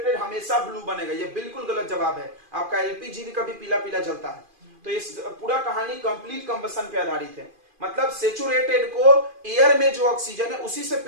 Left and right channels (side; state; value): left; late; 2.4 ms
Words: हमेशा ब्लू बनेगा, ये बिल्कुल गलत जवाब है। आपका एलपीजी भी कभी पीला पीला जलता है। तो ये पूरा कहानी कंप्लीट कंबसन पे आधारित है। मतलब सेचुरेटेड को एयर में जो ऑक्सीजन है उसी से